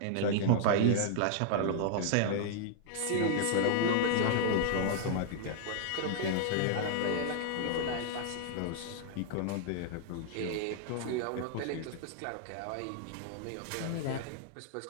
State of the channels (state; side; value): different; both; correlation -0.01